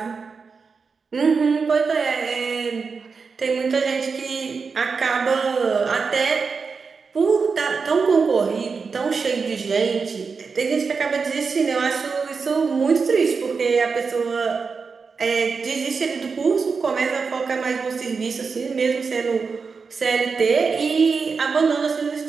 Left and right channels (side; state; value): left; quieter; 5.1 dB